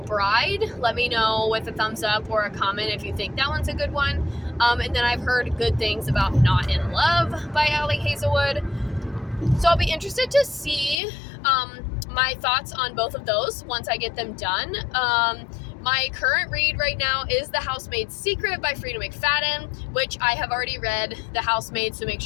Bride. Let me know with a thumbs up or a comment if you think that one's a good one. And then I've heard good things about Not in Love by Ali Hazelwood. So I'll be interested to see my thoughts on both of those once I get them done. My current read right now is The Housemaid's Secret by Frida McFadden, which I have already read The Housemaid, so make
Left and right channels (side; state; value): right; drops out; at 11.0 s